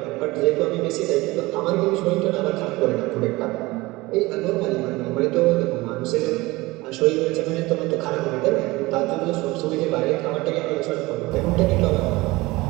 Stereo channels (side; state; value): left; quieter; 21.0 dB